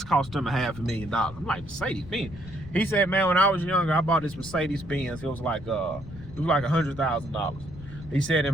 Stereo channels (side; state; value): left; noise; rumble, 15 dB below the sound